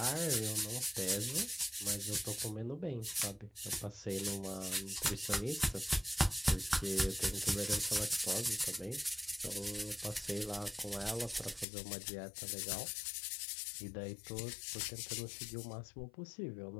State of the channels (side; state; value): right; drops out; at 11.7 s